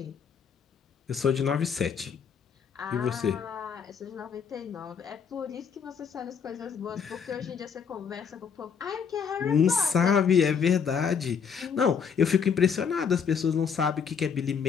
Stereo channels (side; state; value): right; quieter; 6.7 dB